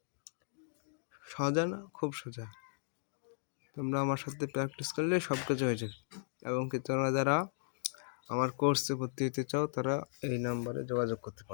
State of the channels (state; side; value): silent; right; digital silence